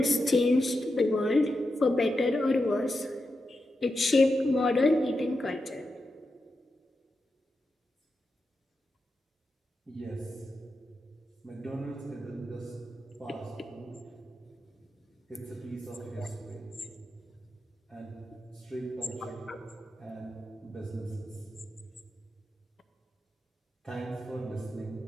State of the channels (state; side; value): normal; both; correlation 0.88